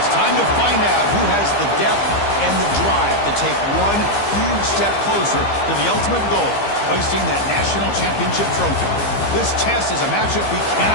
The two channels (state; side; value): late; right; 15 ms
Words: time to find out who has the depth and the drive to take one huge step closer to the ultimate goal, hoisting that national championship trophy. This test is a matchup we